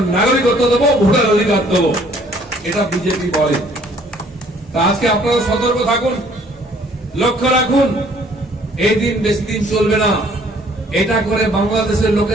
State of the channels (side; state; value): both; normal; correlation 0.59